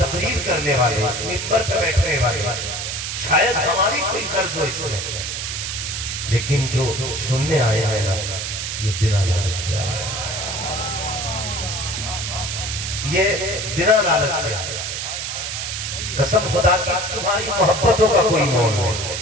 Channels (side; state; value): right; noise; hiss, 4 dB below the sound